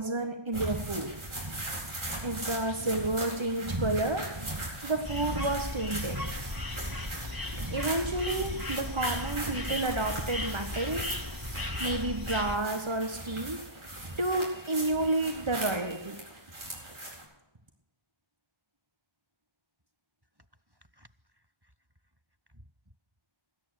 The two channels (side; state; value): left; late; 1.4 ms